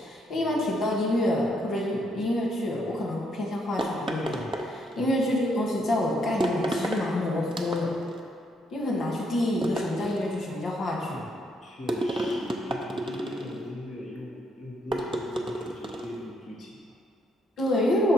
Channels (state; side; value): normal; both; correlation 0.74